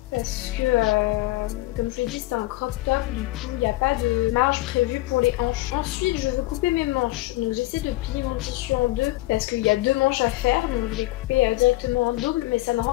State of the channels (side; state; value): right; quieter; 18.7 dB